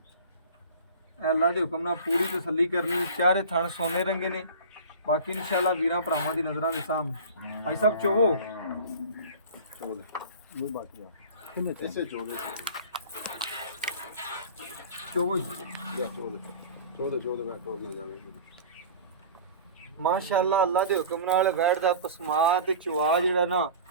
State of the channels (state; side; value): inverted; both; correlation -0.38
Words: ਅੱਲਾ ਦੇ ਹੁਕਮ ਨਾਲ ਪੂਰੀ ਤਸੱਲੀ ਕਰਨੀ। ਚਾਰੇ ਥਣ ਸੋਨੇ ਰੰਗੇ ਨੇ। ਬਾਕੀ ਇਨਸ਼ਾਅੱਲਾ ਵੀਰਾਂ ਭਰਾਵਾਂ ਦੀ ਨਜ਼ਰਾਂ ਦੇ ਸਾਹਮਣੇ ਭਾਈ ਸਾਹਿਬ ਚੋਵੋ ਇਹ ਬਾਕੀ ਆ ਇਸੇ ਚੋ ਦੇ ਚੋਵੋ ਚੋ ਦੇ ਮੈਂ ਟੋਰ ਨਾ ਜਾਵੇ। ਮਾਸ਼ਾਅੱਲਾ ਅੱਲਾ ਦੇ ਹੁਕਮ ਨਾਲ ਵੈੜ ਦਾ ਪਸਮਾ ਤੇ ਚਵਾ ਜਿਹੜਾ ਨਾ